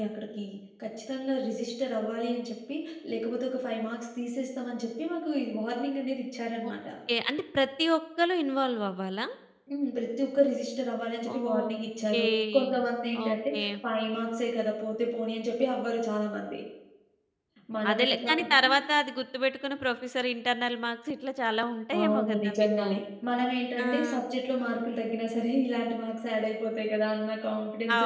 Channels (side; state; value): both; identical; correlation 1.00